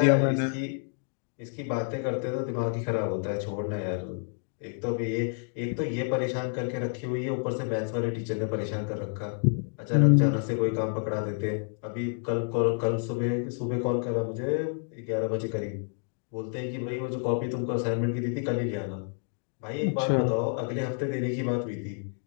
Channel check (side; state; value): right; silent; 55 dB below the other